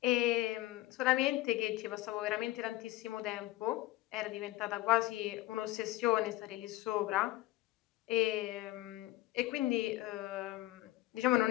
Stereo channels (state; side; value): quieter; right; 17.3 dB